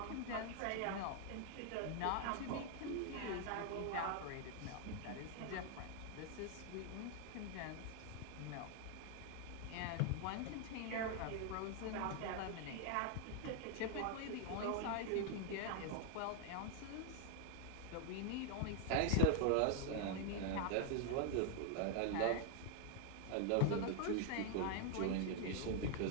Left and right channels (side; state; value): both; different; correlation 0.00